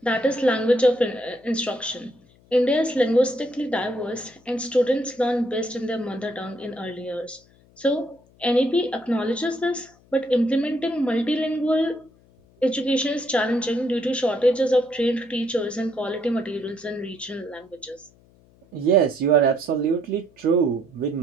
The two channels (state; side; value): noise; left; hum, 30 dB below the sound